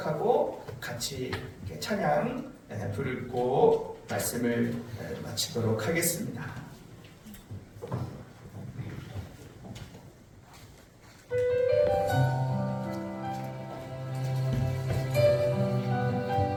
같이 찬양 부르고 말씀을 마치도록 하겠습니다.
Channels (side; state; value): both; identical; correlation 1.00